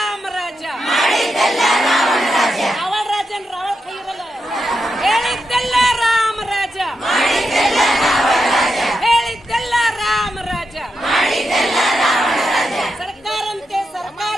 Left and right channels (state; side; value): normal; both; correlation 0.86